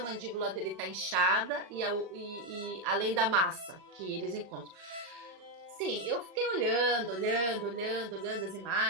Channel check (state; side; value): late; left; 38 ms